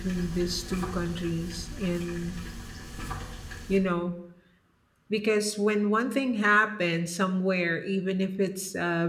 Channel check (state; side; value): identical; both; correlation 1.00